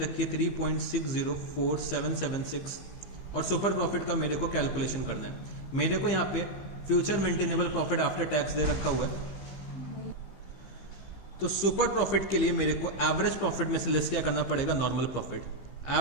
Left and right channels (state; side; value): late; right; 15 ms